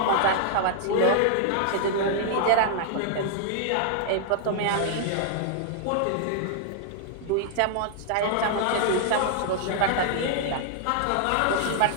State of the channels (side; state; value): both; different; correlation -0.01